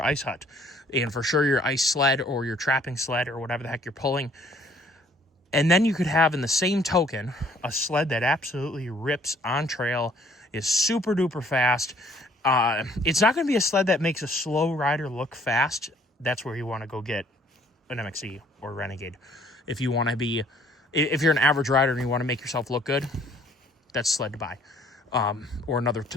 ice hut and for sure your ice sled or your trapping sled or whatever the heck you're pulling. And then you could have in the same token a sled that absolutely rips on trail, is super duper fast. It's not going to be a sled that makes a slow rider look fast. That's where you want to go get an MXE or Renegade. If you're an average rider and you want to make yourself look good, that's sled to buy. Or another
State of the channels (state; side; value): normal; both; correlation 0.60